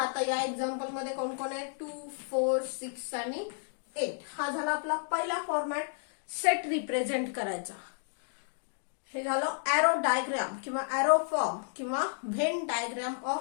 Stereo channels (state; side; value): silent; right; digital silence